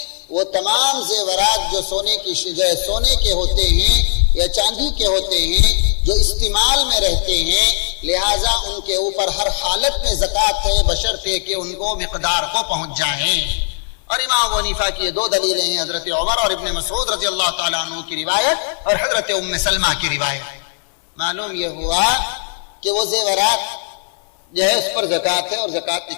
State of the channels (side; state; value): right; silent; 58 dB below the other